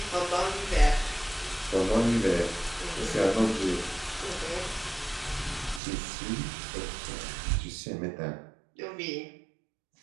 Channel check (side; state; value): left; drops out; at 5.8 s